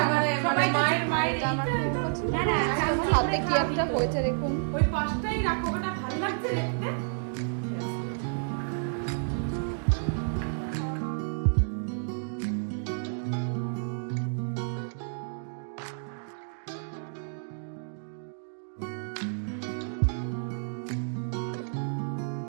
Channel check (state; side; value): silent; left; digital silence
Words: হাতে কি একটা হয়েছে দেখুন। ওই পাশটাই রাখো, ওটা ভালো লাগছে দেখতে।